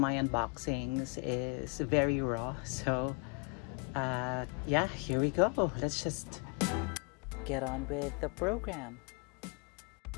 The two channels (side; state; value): right; quieter; 33.6 dB